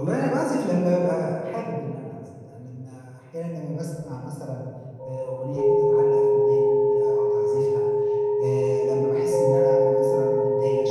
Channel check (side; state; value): both; identical; correlation 1.00